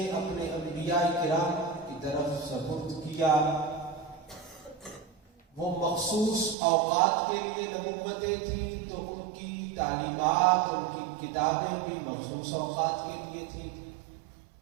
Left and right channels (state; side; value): drops out; left; at 6.6 s